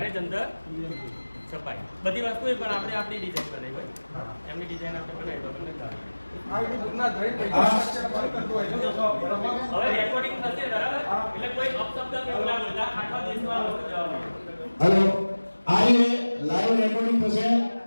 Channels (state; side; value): inverted; both; correlation -1.00